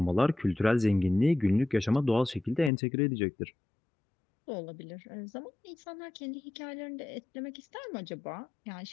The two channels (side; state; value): right; drops out; at 2.7 s